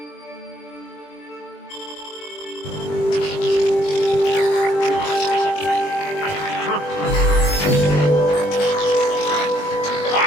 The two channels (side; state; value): right; late; 20 ms